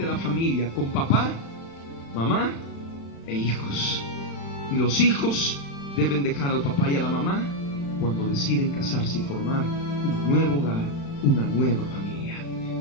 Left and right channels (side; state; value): right; late; 35 ms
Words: la familia con papá, mamá e hijos. Y los hijos deben dejar al papá y a la mamá cuando deciden casarse y formar un nuevo hogar, una nueva familia.